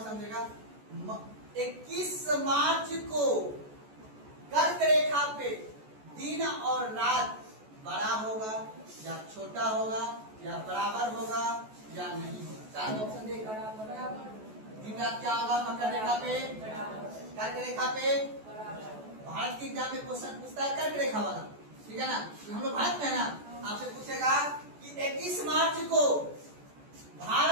समझेगा। 21 मार्च को कर्क रेखा पे दिन और रात बड़ा होगा या छोटा होगा या बराबर होगा या नहीं होगा? चार ऑप्शन देगा। दिन रात क्या होगा मकर रेखा पे, कर्क रेखा पे? भारत के एग्जाम में क्वेश्चन पूछता है कर्क रेखा वाला, ठीक है ना, तो हम लोग भारत में है ना, आपसे पूछेगा कि 21 मार्च को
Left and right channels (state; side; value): late; left; 14 ms